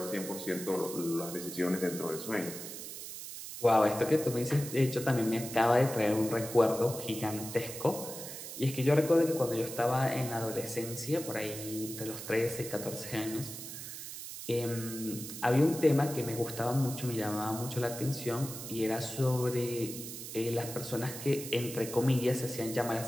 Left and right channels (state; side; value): noise; right; hiss, 9 dB below the sound